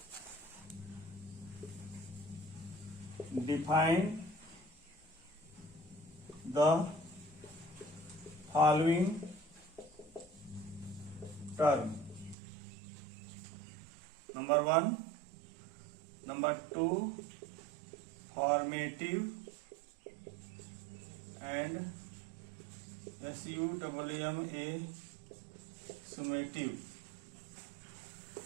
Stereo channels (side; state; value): left; drops out; at 12.4 s